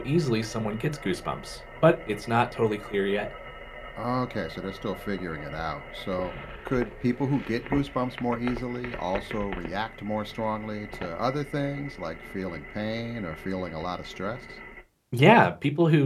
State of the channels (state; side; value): identical; both; correlation 1.00